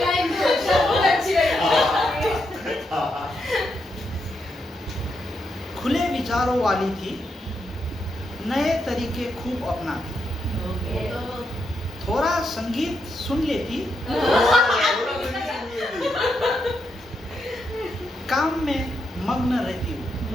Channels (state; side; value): normal; both; correlation 0.82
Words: बहुत अच्छी लगी। खुले विचारों वाली थी, नए तरीके खूब अपनाती, थोड़ा संगीत सुन लेती, काम में मग्न रहती हूँ,